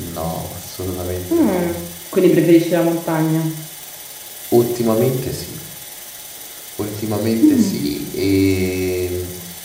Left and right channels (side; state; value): both; identical; correlation 1.00